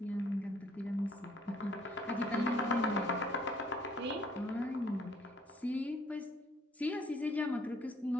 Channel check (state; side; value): normal; both; correlation 0.61